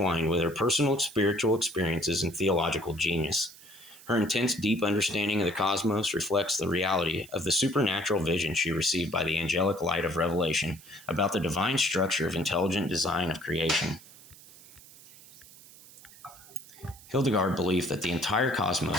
with her personal spiritual experiences and theological genius. Her intense, deep understanding of the cosmos reflects the reality of the supernatural vision she received by the angelic light of revelation about the divine structure of intelligent design of creation. Hildegard believed that the entire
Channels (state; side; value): noise; right; hiss, 21 dB below the sound